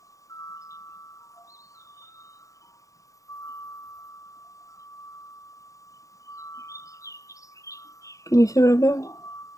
Can you see what I'm doing?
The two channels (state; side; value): late; right; 0.16 ms